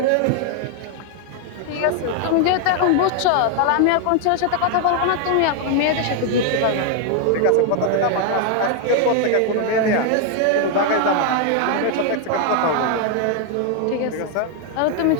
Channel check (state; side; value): different; both; correlation 0.00